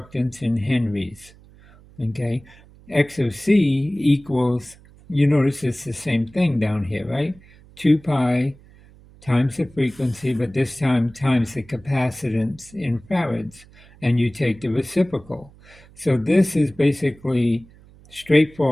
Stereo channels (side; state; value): right; noise; hum, 25 dB below the sound